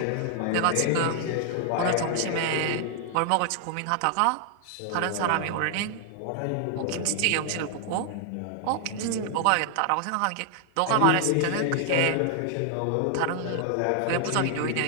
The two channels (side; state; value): both; different; correlation 0.00